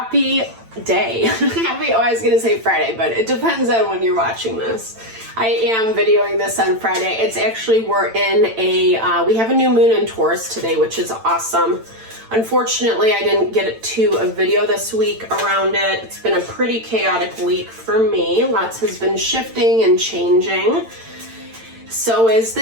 day. I was gonna say Friday, but it depends on when you're watching this. I am videoing this on Friday. It's actually, we're in we have a new moon in Taurus today, which is awesome. Unfortunately, I didn't get to a video this week around it. It's been a pretty chaotic week for me. Lots has been shifting and changing. So is the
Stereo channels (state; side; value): late; left; 8.9 ms